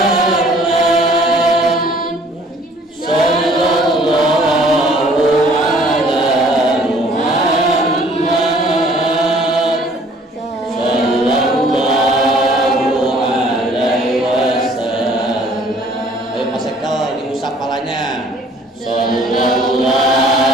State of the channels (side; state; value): both; normal; correlation 0.56